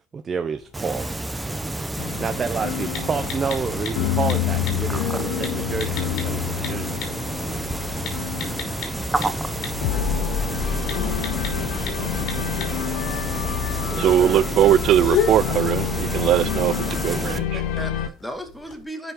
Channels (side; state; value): both; normal; correlation 0.49